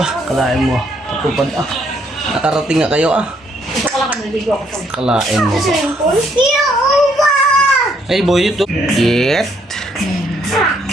kalain mo. Pagpupad, nakarating nga kayo, Ito ka lang naligo ako. Kalain mo. Uwa! Hey, boy, ito. Get.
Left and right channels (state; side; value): normal; both; correlation 0.70